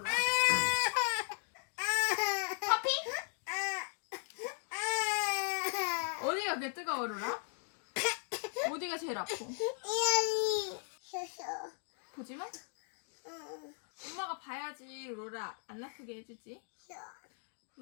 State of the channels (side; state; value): right; silent; 53 dB below the other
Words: 커피? 어디가 그래 뜨거워 로라? 어디가 제일 아파? 이안이 쉬었어. 보지 마. 응. 엄마가 봐야지 로라 안 아프게 해주지. 쉬어.